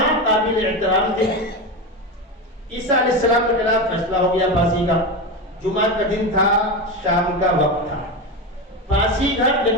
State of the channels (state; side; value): normal; both; correlation 0.18